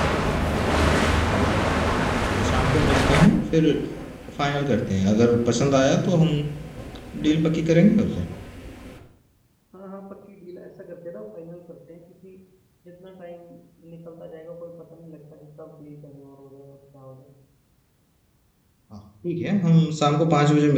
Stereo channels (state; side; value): identical; both; correlation 1.00